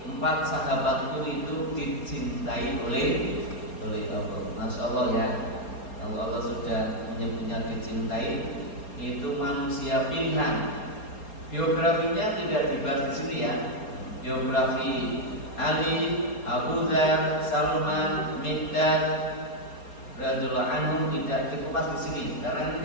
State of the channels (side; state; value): right; late; 4.3 ms